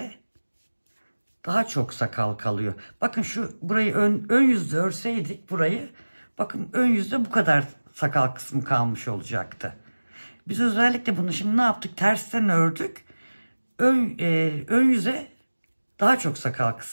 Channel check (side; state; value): both; inverted; correlation -1.00